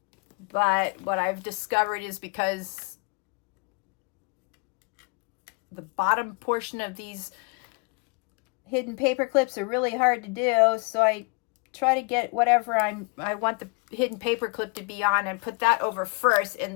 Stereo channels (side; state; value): right; quieter; 32.9 dB